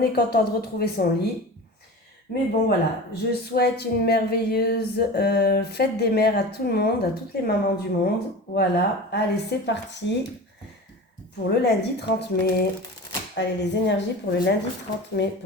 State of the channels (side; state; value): both; normal; correlation 0.33